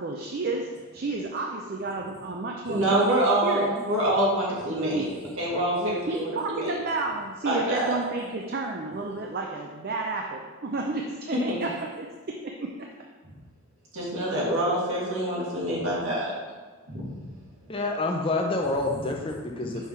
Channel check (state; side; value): normal; both; correlation 0.13